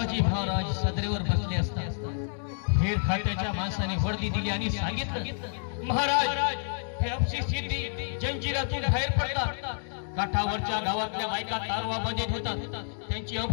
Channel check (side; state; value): right; silent; digital silence